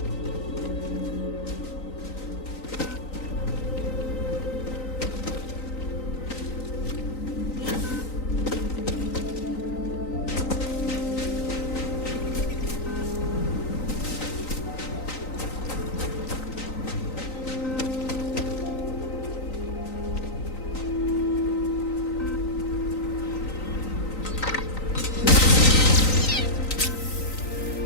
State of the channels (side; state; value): right; late; 3.9 ms